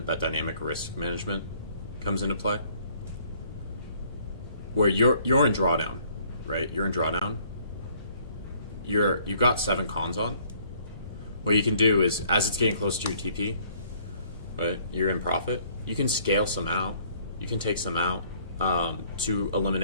that dynamic risk management comes into play. Where you're in drawdown, right? You're in drawdown. You've got 7 cons on. What you can do is, as it's getting close to your TP, right? You're in profit. You can scale some out. You can take some out to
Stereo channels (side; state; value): both; inverted; correlation -0.61